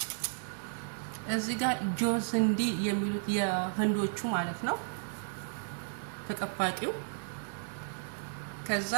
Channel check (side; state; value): left; silent; 55 dB below the other